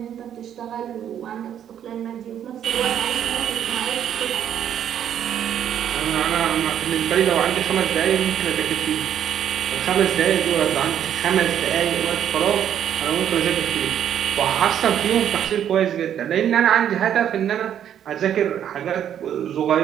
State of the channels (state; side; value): quieter; left; 9.7 dB